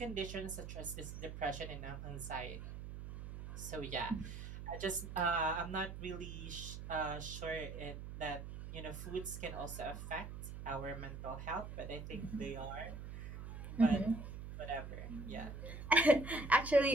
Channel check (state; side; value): noise; right; hum, 9 dB below the sound